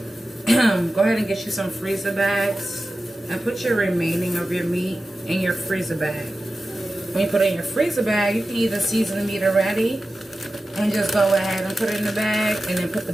Go ahead and get you some freezer bags and put your remaining of your meat in your freezer bag. When you put it in your freezer bag, you can either season the meat already and just go ahead and put it in the bag, and then put the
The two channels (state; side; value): normal; both; correlation 0.93